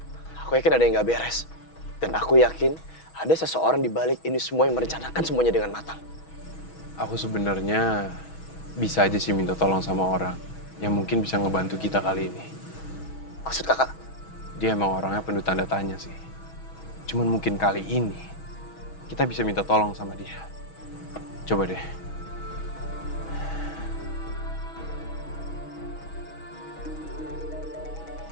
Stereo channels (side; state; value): right; late; 6.2 ms